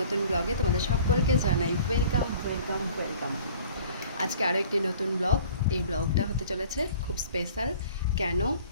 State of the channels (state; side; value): inverted; both; correlation -0.49